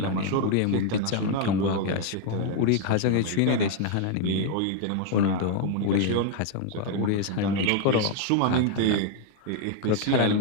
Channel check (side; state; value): both; different; correlation 0.00